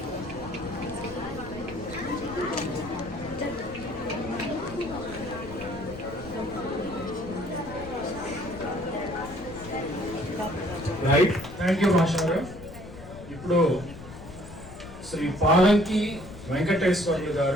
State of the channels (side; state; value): left; noise; rumble, 15 dB below the sound